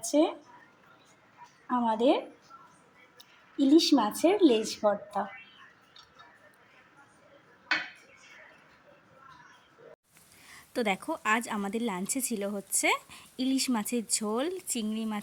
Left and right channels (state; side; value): identical; both; correlation 1.00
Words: আমাদের ইলিশ মাছের লেজ ভর্তা। তো দেখো আজ আমাদের লাঞ্চে ছিল হচ্ছে ইলিশ মাছের ঝোল, চিংড়ি